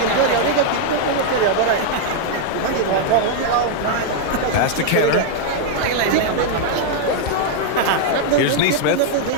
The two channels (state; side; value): different; both; correlation -0.01